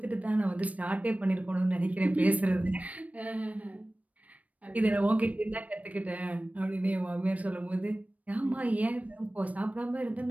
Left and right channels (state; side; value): late; left; 0.069 ms